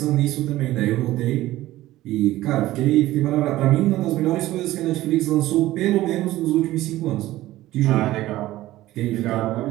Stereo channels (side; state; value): left; quieter; 16.0 dB